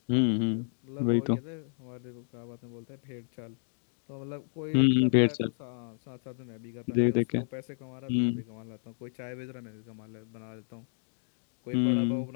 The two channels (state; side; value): silent; right; digital silence